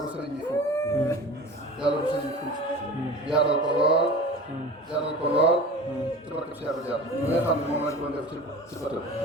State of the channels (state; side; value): normal; both; correlation 0.36